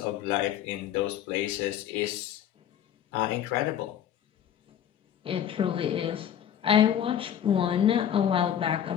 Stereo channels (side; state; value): right; quieter; 9.9 dB